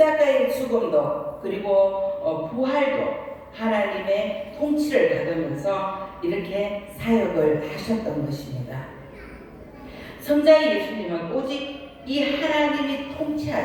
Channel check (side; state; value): both; identical; correlation 1.00